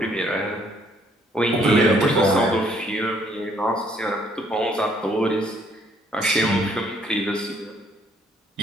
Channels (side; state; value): both; normal; correlation 0.65